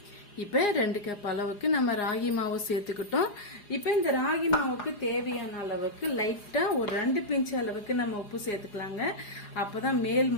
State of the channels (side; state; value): right; late; 4.9 ms